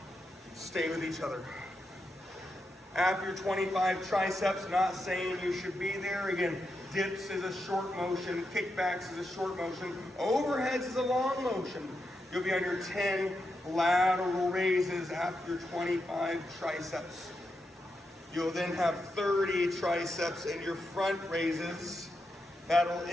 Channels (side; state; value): both; normal; correlation 0.85